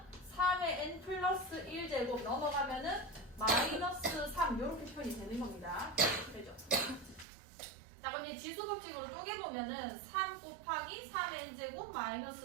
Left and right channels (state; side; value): drops out; left; at 7.2 s